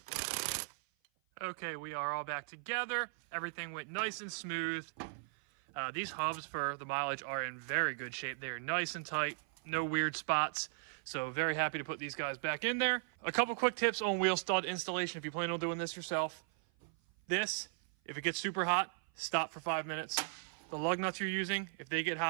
Okay, we are all back together. Everything went nice and smooth. These hubs for the mileage are in very good shape. They are nice and tight, no weird spots. So very happy to put these guys back in there. A couple quick tips on wheel stud installation if you plan on doing this yourself. This, if it gets super hot, stop for 5 minutes. The lug nuts you're using, if they get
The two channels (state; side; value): silent; left; 53 dB below the other